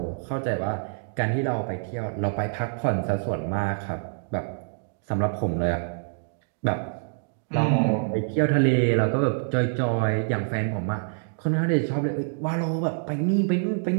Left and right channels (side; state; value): left; silent; digital silence